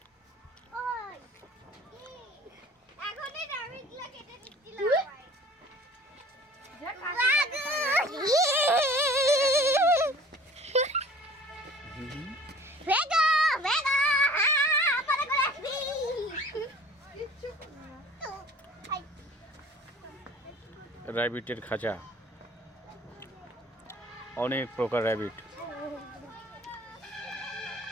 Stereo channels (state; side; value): normal; both; correlation 0.48